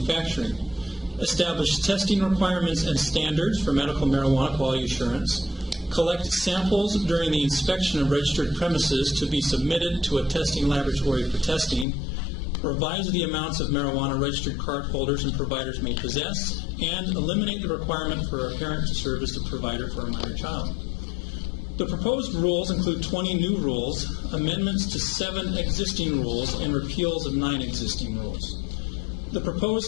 Establish testing requirements and standards for medical marijuana quality assurance, collect samples during the inspection of registered premises to be submitted to a testing laboratory for testing, revise the amounts of marijuana registered card holders and providers may possess, and eliminate the requirement for a parent to serve as the provider for a minor child. The proposed rules include 20 new rules, amendments to 7 existing rules, and repeals of 9 existing rules. The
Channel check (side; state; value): right; drops out; at 11.9 s